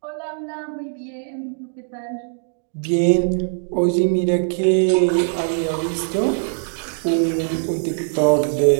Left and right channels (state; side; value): silent; left; digital silence